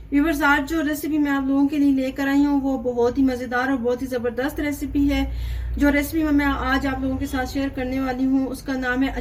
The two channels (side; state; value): both; identical; correlation 1.00